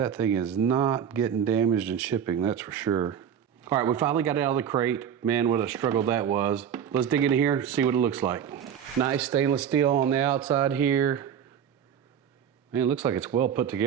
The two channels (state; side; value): quieter; left; 8.5 dB